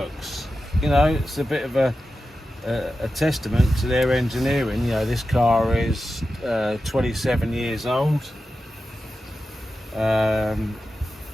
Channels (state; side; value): normal; both; correlation 0.92